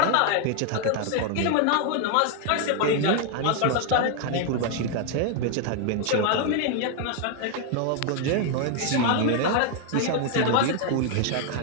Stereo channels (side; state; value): both; different; correlation 0.00